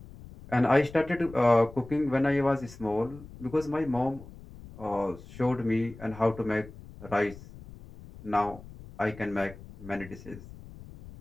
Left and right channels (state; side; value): noise; left; rumble, 17 dB below the sound